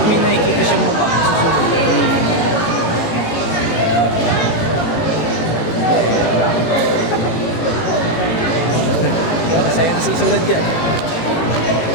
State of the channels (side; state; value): right; late; 18 ms